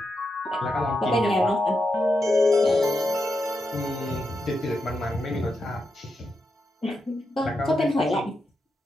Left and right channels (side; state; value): both; normal; correlation 0.86